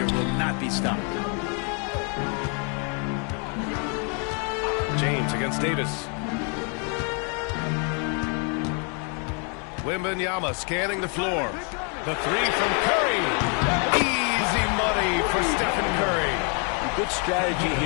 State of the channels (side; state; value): right; quieter; 38.4 dB